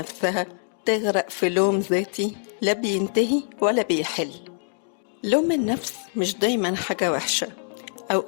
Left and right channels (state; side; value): silent; right; digital silence